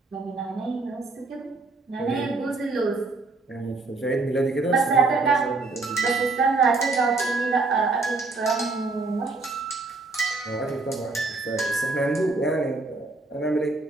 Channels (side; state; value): left; quieter; 3.6 dB